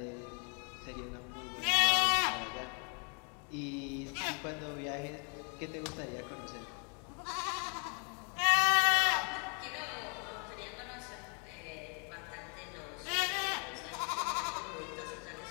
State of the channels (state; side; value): quieter; right; 38.9 dB